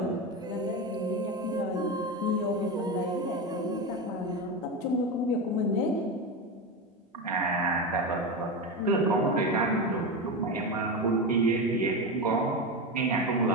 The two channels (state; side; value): normal; both; correlation 0.18